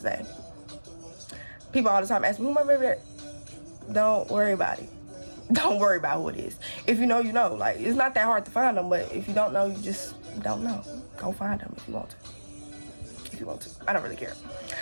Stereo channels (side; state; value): both; inverted; correlation -1.00